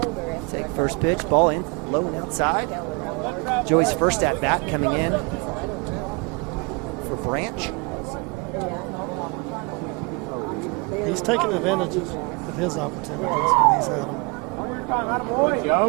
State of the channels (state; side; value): quieter; left; 30.6 dB